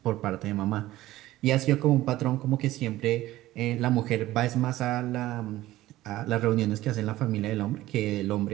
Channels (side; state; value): left; quieter; 16.0 dB